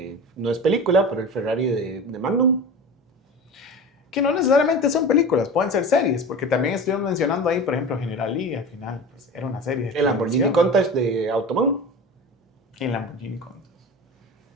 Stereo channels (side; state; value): both; normal; correlation 0.32